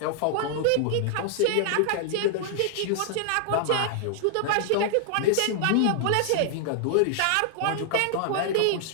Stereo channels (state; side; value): different; both; correlation -0.01